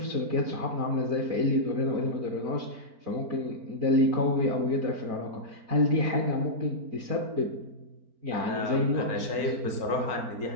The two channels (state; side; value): late; left; 4.4 ms